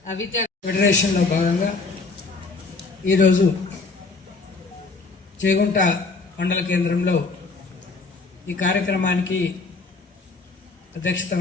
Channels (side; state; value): right; quieter; 3.9 dB